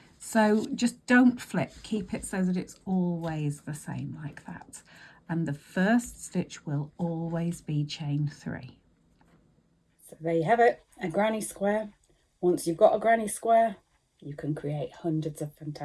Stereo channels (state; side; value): identical; both; correlation 1.00